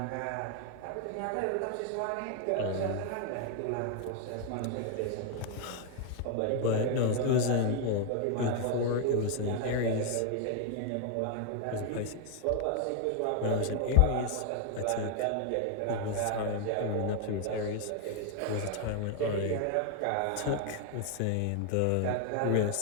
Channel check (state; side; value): different; both; correlation 0.01